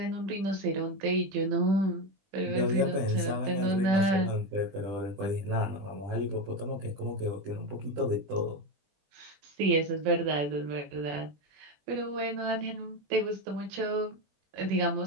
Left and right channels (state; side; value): late; left; 21 ms